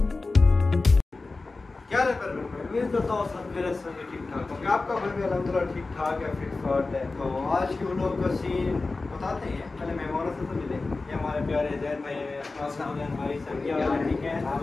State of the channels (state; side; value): quieter; right; 3.6 dB